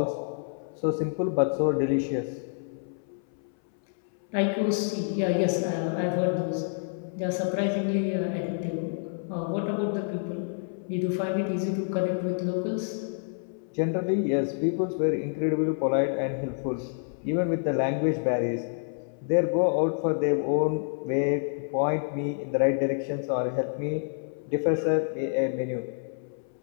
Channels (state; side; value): silent; right; 59 dB below the other